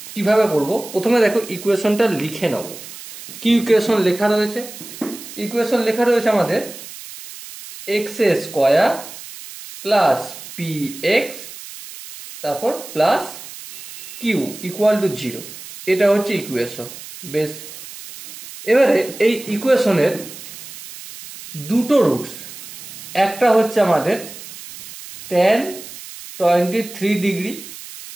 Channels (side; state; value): right; noise; hiss, 14 dB below the sound